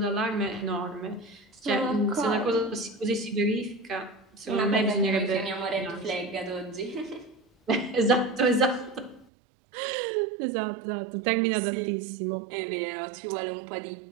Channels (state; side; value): drops out; left; at 9.2 s